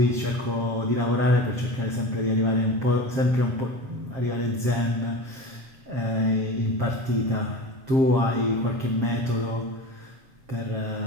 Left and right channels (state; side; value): late; left; 7.5 ms